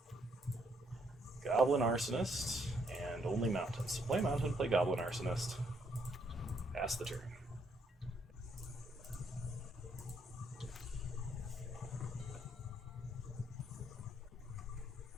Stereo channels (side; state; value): both; normal; correlation 0.71